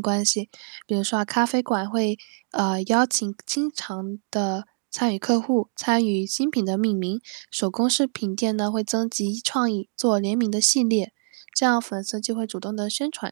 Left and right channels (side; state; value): left; silent; 62 dB below the other